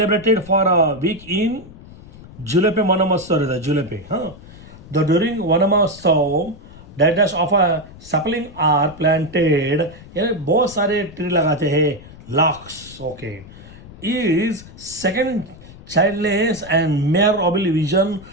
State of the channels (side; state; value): left; noise; rumble, 19 dB below the sound